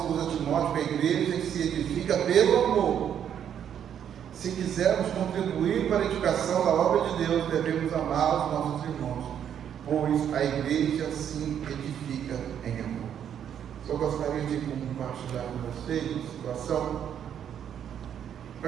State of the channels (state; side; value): quieter; left; 9.1 dB